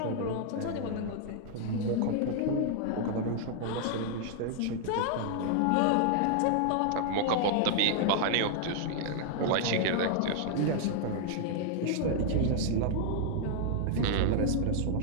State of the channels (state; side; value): different; both; correlation 0.00